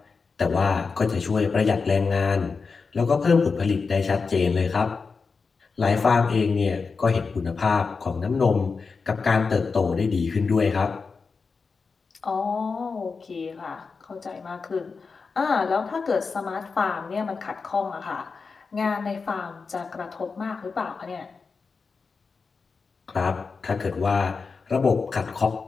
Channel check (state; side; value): quieter; right; 4.8 dB